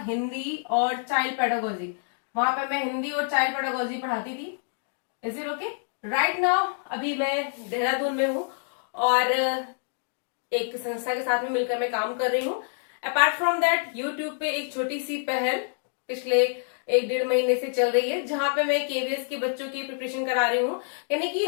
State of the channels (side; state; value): right; silent; 60 dB below the other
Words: हिंदी और चाइल्ड पेडागोजी। वहां पे मैं हिंदी और चाइल्ड पेडागोजी पढ़ाती थी। Is it okay? Right now अभी मैं देहरादून में हूँ और एक संस्था के साथ में मिलकर मैं काम कर रही हूँ। अपार्ट फ्रॉम दैट, यूट्यूब पे एक छोटी सी पहल पिछले 1-1.5 महीने से चल रही है, जहां पे मैं केवीएस के बच्चों की प्रिपरेशन करा रही हूँ। यानी कि